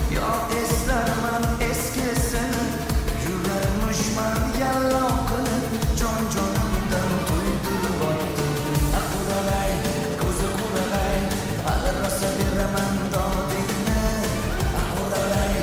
yo eslarman eskisini, yurarmushman yallo qilib jon-jonimdan to'ydirib o'tdi. Quralay, ko'zi quralay, hali rosa beraman dodingni. Quralay,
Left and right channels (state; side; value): identical; both; correlation 1.00